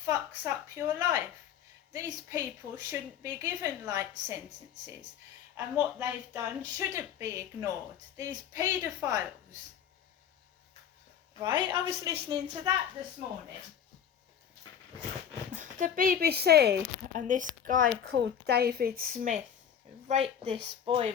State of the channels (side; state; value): right; quieter; 8.7 dB